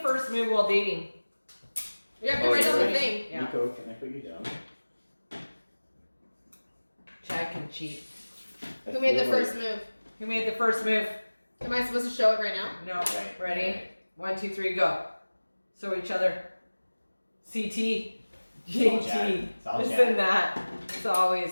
first move while dating? You have to Oh, write down the you're thing. Yeah. Nico, can I put you down? Chad can cheat. I Who made the feel like- first move? Who made the first move? Am I supposed to show it right now? No. Right. Ready? 1, 2, 3, go. So each other. CT. JT. It's all Listen Chad. that. It's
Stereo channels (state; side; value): inverted; both; correlation -1.00